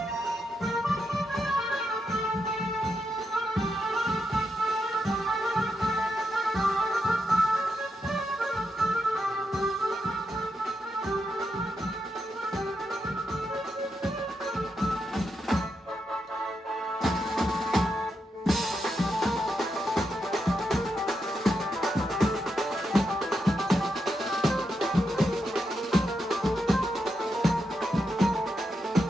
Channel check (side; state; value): both; normal; correlation 0.84